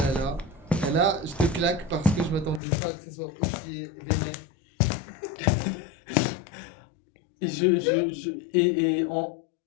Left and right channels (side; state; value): right; drops out; at 2.6 s